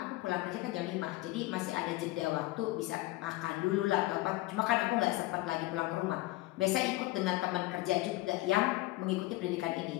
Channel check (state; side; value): quieter; right; 18.9 dB